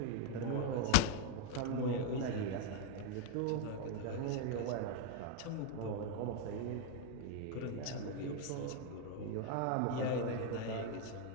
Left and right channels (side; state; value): both; different; correlation 0.00